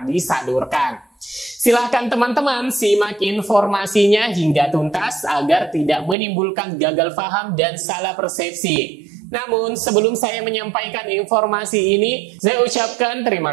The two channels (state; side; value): drops out; left; at 6.2 s